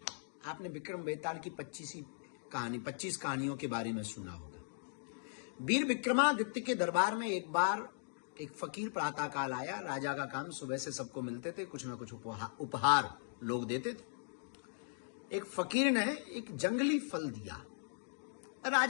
आपने विक्रम बेताल की 25 कहानियों के बारे में सुना होगा। वीर विक्रमादित्य के दरबार में एक बार एक फकीर प्रातःकाल आया। राजा का काम सुबह से सबको मिलते थे, कुछ ना कुछ उपहार लोग देते थे। एक फकीर ने एक जंगली फल दिया।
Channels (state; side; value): silent; right; digital silence